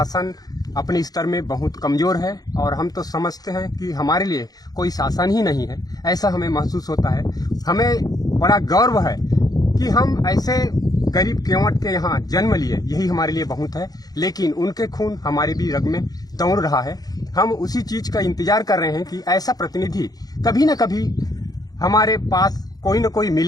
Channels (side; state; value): right; late; 0.19 ms